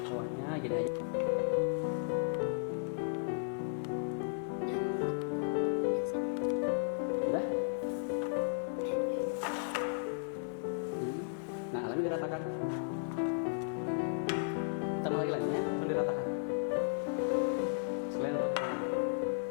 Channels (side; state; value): right; silent; digital silence